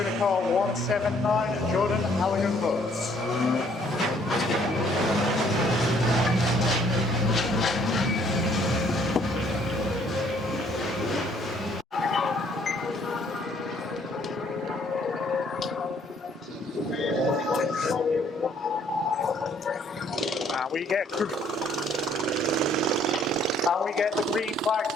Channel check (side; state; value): both; normal; correlation 0.63